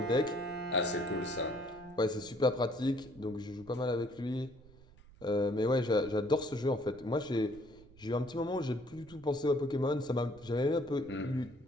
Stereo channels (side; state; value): right; noise; rumble, 23 dB below the sound